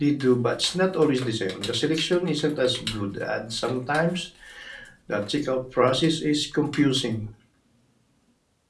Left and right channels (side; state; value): both; identical; correlation 1.00